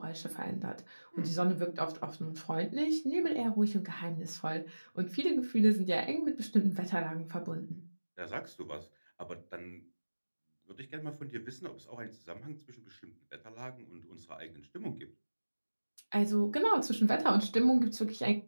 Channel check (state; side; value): inverted; both; correlation -1.00